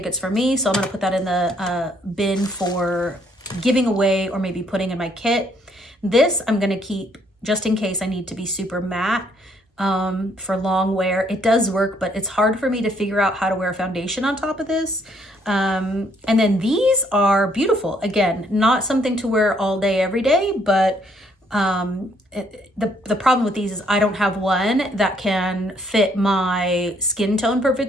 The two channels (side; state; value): both; normal; correlation 0.68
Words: it's for me. So I'm gonna put that in the bin for giving away or maybe putting in my kit. This I'm gonna keep just in case I need to be super matte for long wear. It does work, but it's hard for me to figure out how to wear foundation on top of this. And then these are beautiful. Again, not something to wear all day, every day, but the problem with these is I don't have one that can fit my skin tone